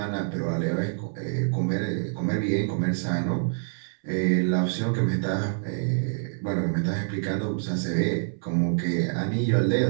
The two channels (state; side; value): silent; left; 61 dB below the other